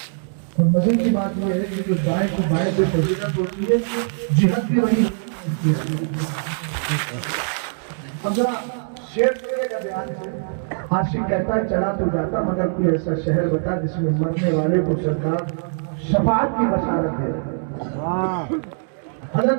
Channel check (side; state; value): left; silent; digital silence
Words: اور مزے کی بات یہ ہے کہ جو دائیں کو بائیں سے فضیلت ہوتی ہے جہاد بھی وہی ہوتی ہے. اب ذرا شعر کا بیان ہے. عاشق کہتا ہے چلا تو جاتا مگر کوئی ایسا شہر بتا جس میں مرنے والے کو سرکار شفاعت کی بشارت دے.